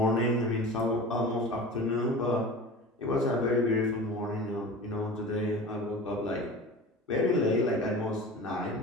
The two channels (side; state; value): both; normal; correlation 0.35